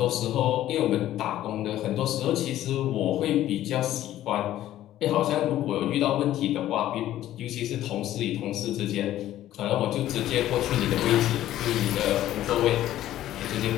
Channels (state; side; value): quieter; right; 13.3 dB